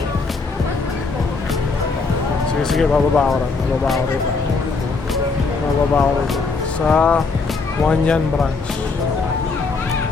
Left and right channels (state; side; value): quieter; right; 4.2 dB